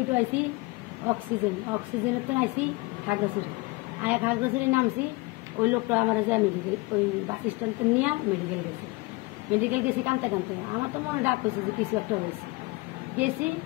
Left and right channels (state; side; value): quieter; right; 24.0 dB